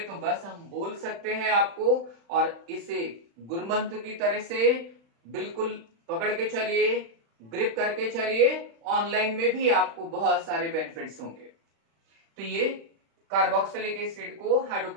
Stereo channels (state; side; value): late; left; 35 ms